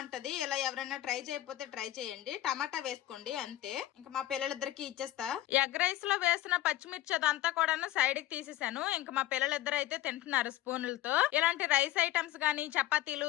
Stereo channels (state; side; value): quieter; right; 14.6 dB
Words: ఇలా ఎవరైనా ట్రై చేయకపోతే ట్రై చేయండి, టమాటా వేసుకోండి అంతే. ఇంకా మా పిల్లలిద్దరికి ఇచ్చేస్తా. ఎగ్ రైస్ లో వేసిన పచ్చిమిర్చి అదంతా కూడా సైడ్ కి తీసేసాను. ఇంకా మా పిల్లలిద్దరు అయితే తింటున్నారు స్పూన్లతో. ఇలాంటి రైస్ ఐటమ్స్ గానీ,